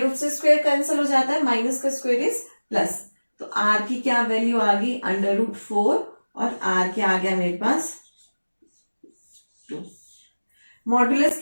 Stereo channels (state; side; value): inverted; both; correlation -1.00